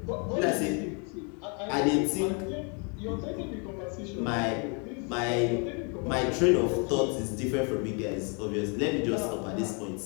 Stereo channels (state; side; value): quieter; right; 36.5 dB